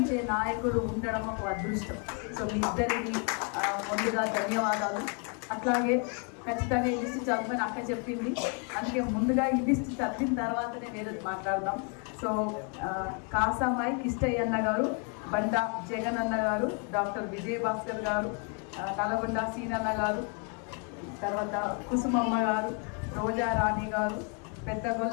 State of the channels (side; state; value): right; quieter; 38.2 dB